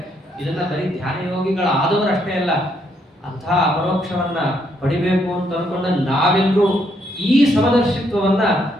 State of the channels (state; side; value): normal; both; correlation 0.73